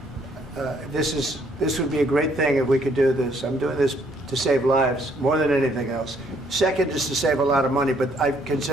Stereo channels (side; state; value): both; normal; correlation 0.66